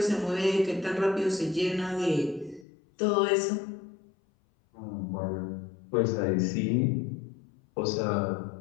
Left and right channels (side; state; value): right; drops out; at 2.7 s